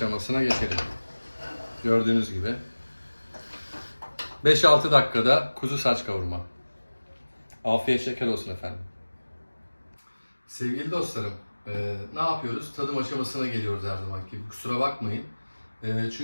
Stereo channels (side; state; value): both; inverted; correlation -1.00